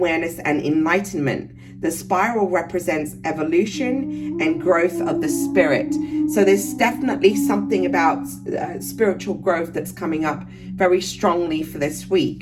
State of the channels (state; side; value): identical; both; correlation 1.00